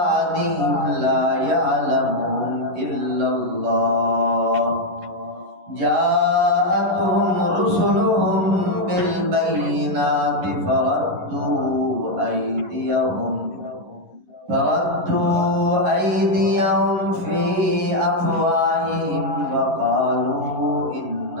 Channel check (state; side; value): late; left; 11 ms